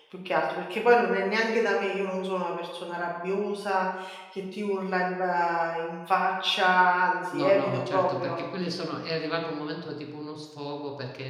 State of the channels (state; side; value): identical; both; correlation 1.00